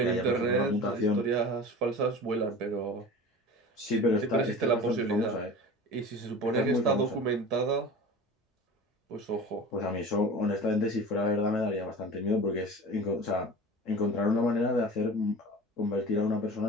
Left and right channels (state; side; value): normal; both; correlation 0.36